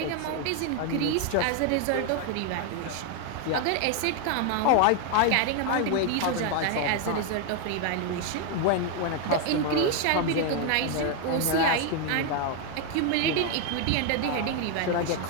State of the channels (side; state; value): both; different; correlation 0.01